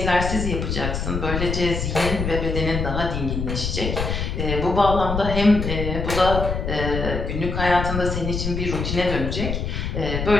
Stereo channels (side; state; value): left; noise; rumble, 3 dB below the sound